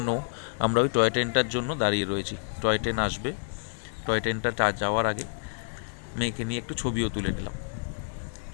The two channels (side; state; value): right; silent; 59 dB below the other